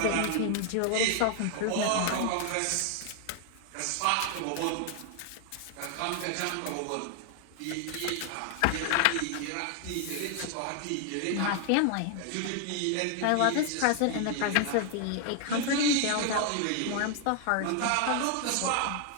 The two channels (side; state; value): both; different; correlation 0.00